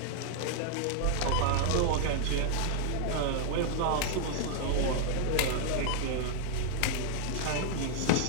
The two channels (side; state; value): both; different; correlation 0.00